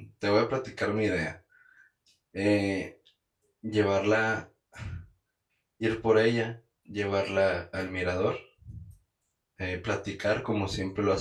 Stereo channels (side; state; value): both; identical; correlation 1.00